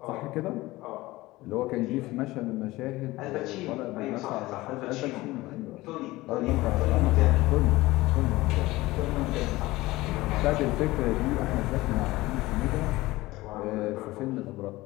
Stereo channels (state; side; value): quieter; right; 19.1 dB